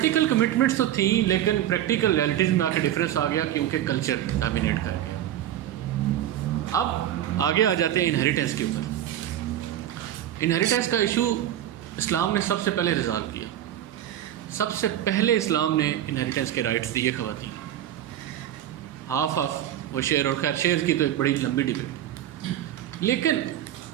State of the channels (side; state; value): left; quieter; 11.8 dB